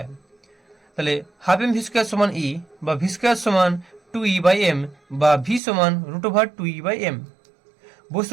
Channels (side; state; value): left; drops out; at 5.6 s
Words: তাহলে ½ m v² সমান E, বা v² সমান 2e/m, বা v সমান √2e/m।